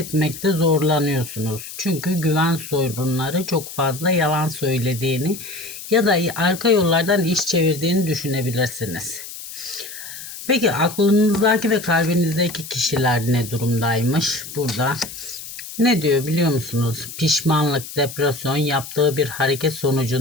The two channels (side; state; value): left; noise; hiss, 12 dB below the sound